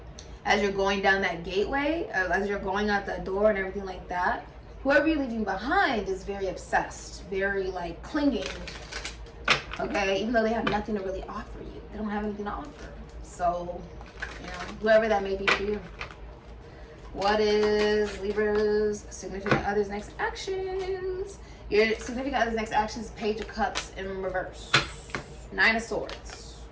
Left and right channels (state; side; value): identical; both; correlation 1.00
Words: as you're going down that gateway, as you're going out that door and everything like that. Whoever you're leaving behind is very obsessed, very like clinging. Okay, even though they have nothing to really offer you, they don't have anything to offer. So, you know, whoever that may be for you. What is Libra's significant other's next actions? Your significant other's next actions is Page of Cups in reverse. 9 of Swords.